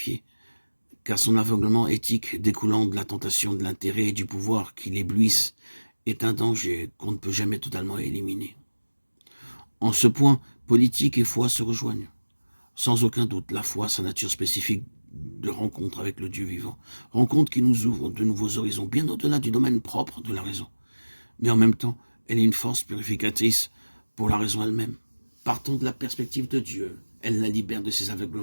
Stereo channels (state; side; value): inverted; both; correlation -1.00